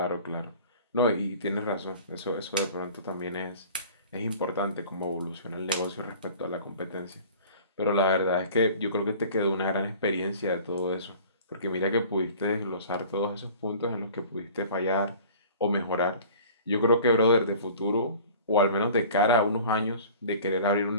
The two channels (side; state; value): both; inverted; correlation -0.45